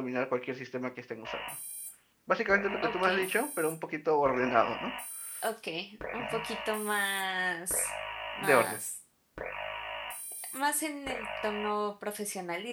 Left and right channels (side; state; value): both; identical; correlation 1.00